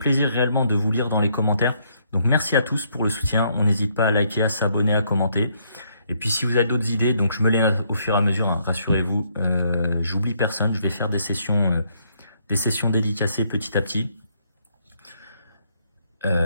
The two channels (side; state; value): both; inverted; correlation -0.71